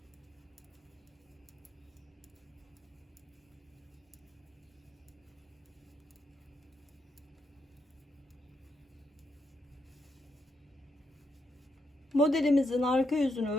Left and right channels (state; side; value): normal; both; correlation 0.81